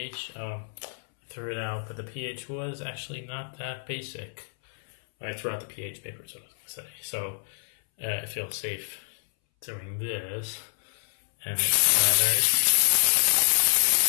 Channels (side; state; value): right; silent; 61 dB below the other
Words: I threw it out, but the pH was actually not that basic. I threw out the pH paper, so I was going to say. So I feel safe doing this. And